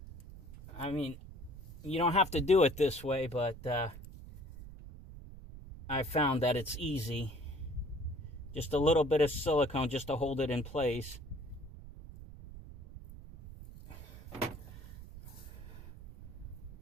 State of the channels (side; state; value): right; noise; rumble, 14 dB below the sound